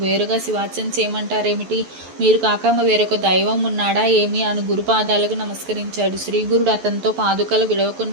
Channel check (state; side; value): late; left; 11 ms